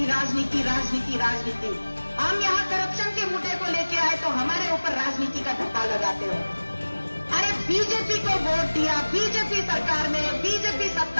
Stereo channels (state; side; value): inverted; both; correlation -1.00